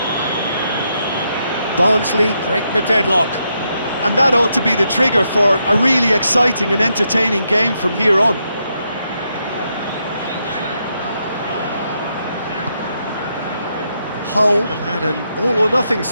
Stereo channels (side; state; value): both; inverted; correlation -0.80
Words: Barnsley break the deadlock. And that ought to be the trigger for a really exciting and entertaining game from here on. Hull have had an all-or-nothing